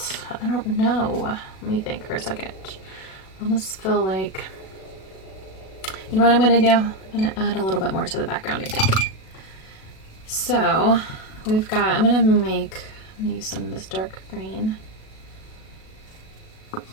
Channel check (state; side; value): late; right; 37 ms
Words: I don't know. Let me think for a second. I almost feel like, you know what I'm going to do? I'm going to add a little bit more to the background, I think. So, we've got, I'm going to use some of this dark green.